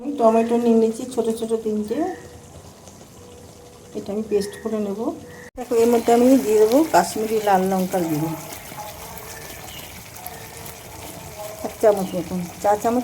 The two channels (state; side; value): identical; both; correlation 1.00